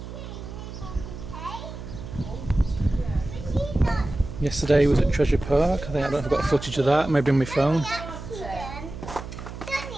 Yesterday was at Treasure Park. I don't know if I've got footage of that, maybe on my phone.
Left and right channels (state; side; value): noise; right; hum, 11 dB below the sound